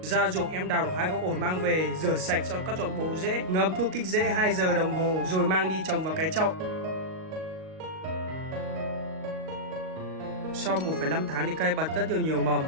Ra ruộng em đào được 2 gốc ổi mang về, rửa sạch cho cắt dọn bộ rễ, ngâm thuốc kích rễ 2 giờ đồng hồ rồi mang đi trồng vào cái chậu. Sau 1,5 tháng thì cây bật rất nhiều mầm.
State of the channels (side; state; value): left; late; 38 ms